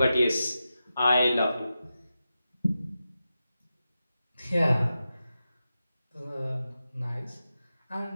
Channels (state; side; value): inverted; both; correlation -0.91